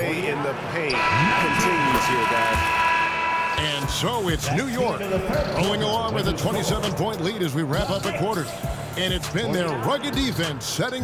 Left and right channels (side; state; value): both; identical; correlation 1.00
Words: in the paint continues here, guys. And so it's New York rolling along with a 27-point lead as we wrap up the quarter. And it's been their rugged defense setting